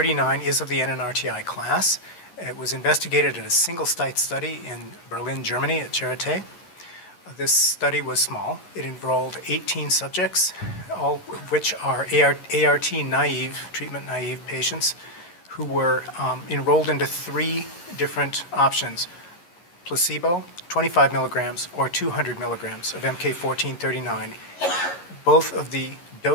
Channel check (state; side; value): late; right; 11 ms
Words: is of the Nnrti class. It was investigated in a single-site study in Berlin, Germany at Charité. This study was small. It enrolled 18 subjects, all of which are ART-naive, treatment-naive patients who were enrolled into 3 different options: placebo, 25 milligrams, or 200 milligrams of MK-1439. Both of the